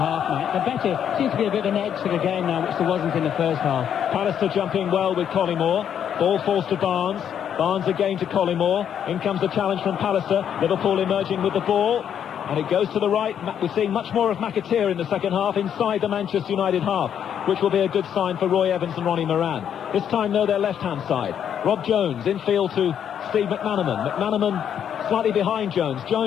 mate. The better seems to be a bit of an edge to the game now, which there wasn't in the first half. Pallister jumping well with Collymore. Ball falls to Barnes. Barnes again to Collymore. In comes the challenge from Pallister. Liverpool emerging with the ball. And it goes to the right. We're seeing much more of McAteer in the second half inside the Manchester United half. which will be a good sign for Roy Evans and Ronnie Moran. This time, though, their left-hand side. Rob Jones infield to Steve McManaman. McManaman slightly behind Jones.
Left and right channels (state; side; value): quieter; right; 8.9 dB